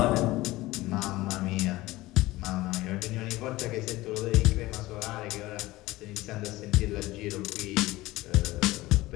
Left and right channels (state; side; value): quieter; right; 18.6 dB